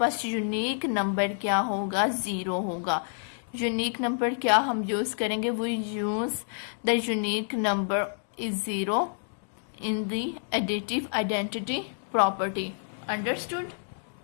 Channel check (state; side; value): silent; right; digital silence